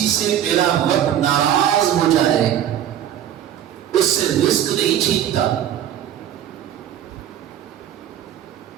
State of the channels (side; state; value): left; quieter; 10.5 dB